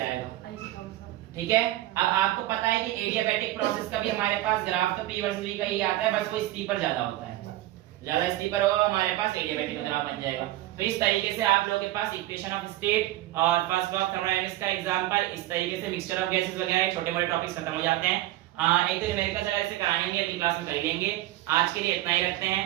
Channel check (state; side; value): quieter; left; 15.9 dB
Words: ठीक है। अब आपको पता है कि एडियाबैटिक प्रोसेस का भी हमारे पास ग्राफ तो P वर्सेस V का ही आता है, बस वो स्टीपर ज्यादा होता है, ज्यादा स्टीपर होगा हमारे पास एडियाबैटिक का ग्राफ बन जाएगा। तो इस तरीके से आप लोगों के पास इक्वेशन ऑफ स्टेट और फर्स्ट लॉ ऑफ थर्मोडायनामिक्स का एग्जांपल, इस तरीके से मिक्सचर ऑफ गैसेस वगैरह छोटे मोटे टॉपिक्स खत्म हो जाते हैं। एक तो न्यूमेरिकल चला इसे कराएंगे, अगली क्लास में कर लेंगे। आज के लिए इतना ही रखते हैं।